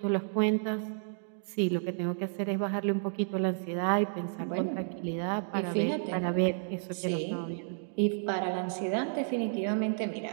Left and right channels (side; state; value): left; silent; digital silence